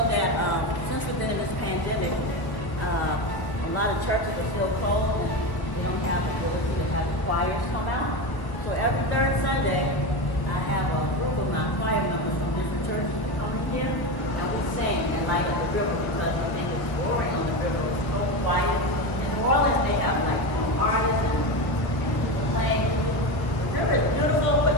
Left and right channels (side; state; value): right; late; 1.0 ms